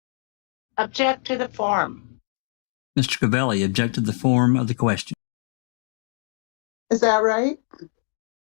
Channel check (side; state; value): right; silent; digital silence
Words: Object to the form. Mr. Cavalli, object to the form of the question. Is that right?